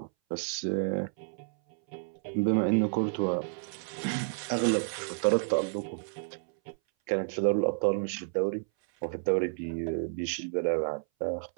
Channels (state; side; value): silent; left; 57 dB below the other